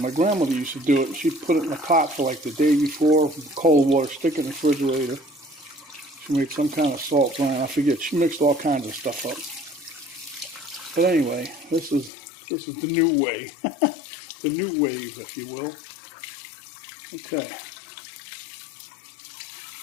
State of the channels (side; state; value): right; drops out; at 12.1 s